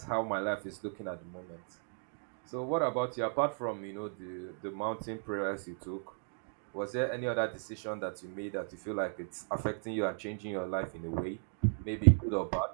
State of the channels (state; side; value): silent; left; digital silence